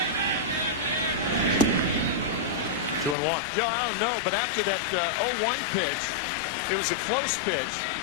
Two and one. Joe, I don't know, but after that 0-1 pitch, it was a close pitch.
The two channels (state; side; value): drops out; right; at 3.2 s